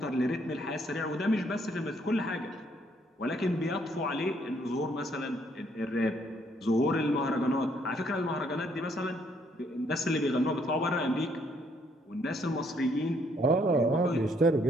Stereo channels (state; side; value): normal; both; correlation 0.69